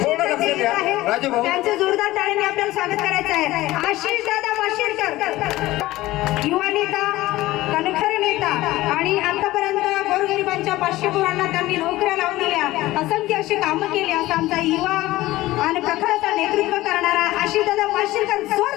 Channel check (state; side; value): quieter; right; 17.3 dB